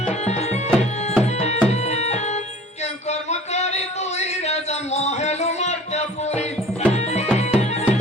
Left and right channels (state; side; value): normal; both; correlation 0.46